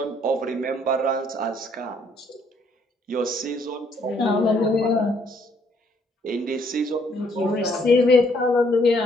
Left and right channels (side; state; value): both; normal; correlation 0.67